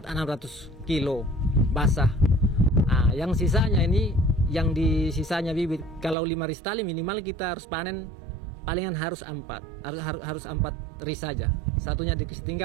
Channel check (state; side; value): drops out; left; at 6.2 s